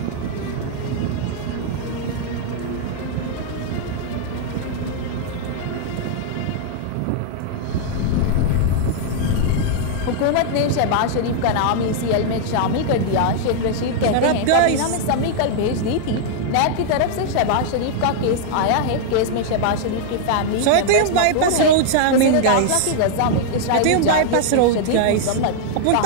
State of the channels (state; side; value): different; both; correlation -0.01